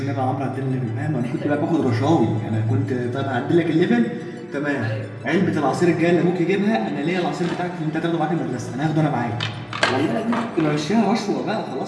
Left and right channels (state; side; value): identical; both; correlation 1.00